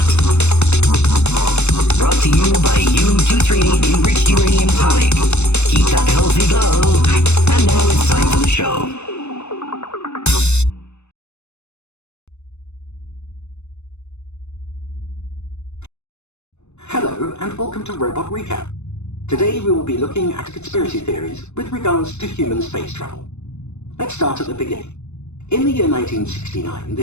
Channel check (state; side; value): late; right; 0.81 ms